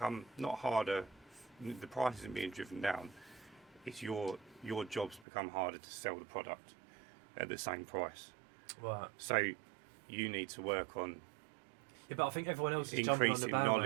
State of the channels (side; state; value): left; drops out; at 5.2 s